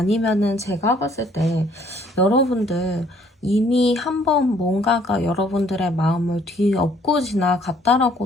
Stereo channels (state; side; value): normal; both; correlation 0.62